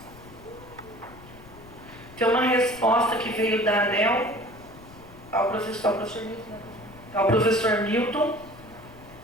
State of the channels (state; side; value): noise; left; rumble, 21 dB below the sound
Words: Tem uma resposta que veio da ANEEL ao professor Milton